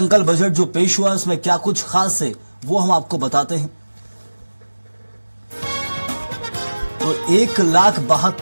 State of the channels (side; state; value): both; inverted; correlation -1.00